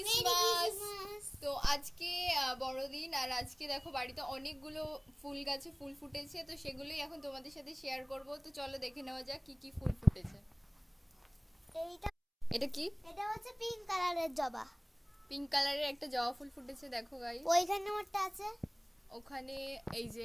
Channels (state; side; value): identical; both; correlation 1.00